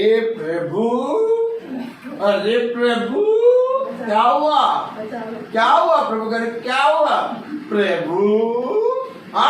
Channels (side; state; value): both; identical; correlation 1.00